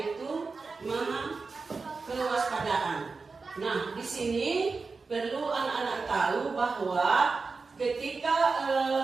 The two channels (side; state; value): left; quieter; 4.3 dB